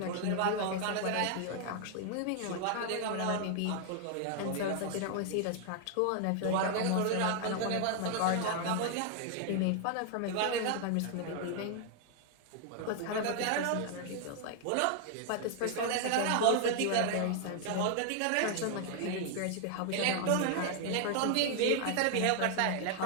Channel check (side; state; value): both; different; correlation 0.00